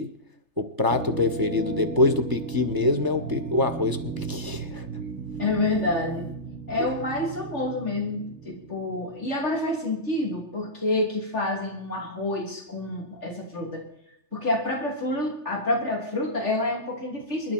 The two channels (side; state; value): left; late; 3.3 ms